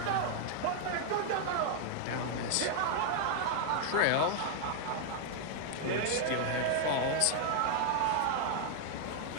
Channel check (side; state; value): both; different; correlation 0.00